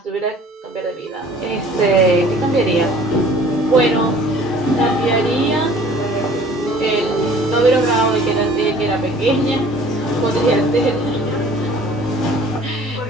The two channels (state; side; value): normal; both; correlation 0.51